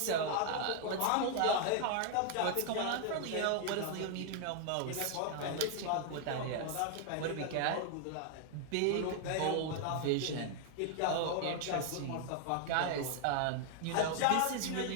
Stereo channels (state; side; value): different; both; correlation 0.00